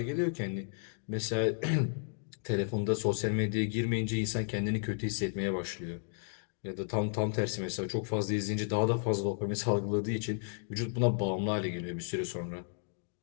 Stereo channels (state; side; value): silent; right; digital silence